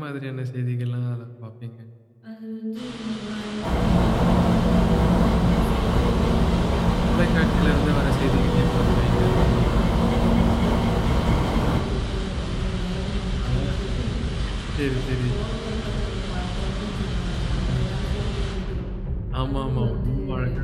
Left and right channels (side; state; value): both; identical; correlation 1.00